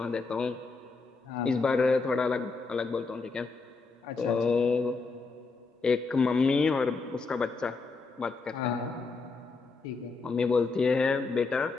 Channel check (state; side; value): quieter; right; 4.2 dB